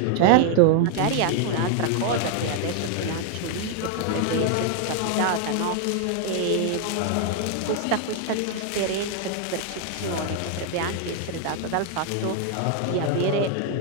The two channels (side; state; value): both; different; correlation 0.00